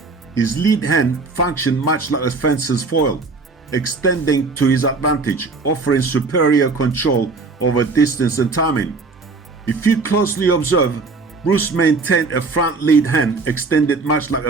His lead hand functioned much like a fencer's foil, extending to his advantage, offering superior control over distance and timing. If you closely observe, Bruce maintained a front lead hand extended much like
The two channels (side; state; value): left; quieter; 3.9 dB